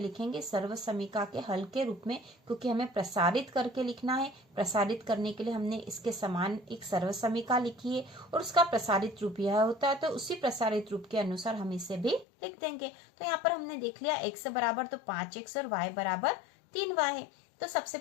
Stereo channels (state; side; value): drops out; right; at 12.2 s